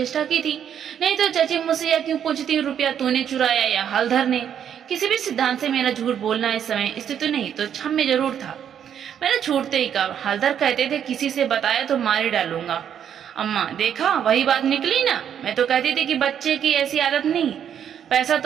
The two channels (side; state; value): left; quieter; 9.0 dB